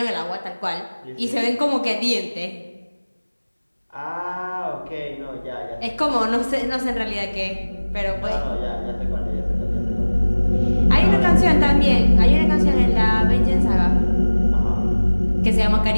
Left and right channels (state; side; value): inverted; both; correlation -1.00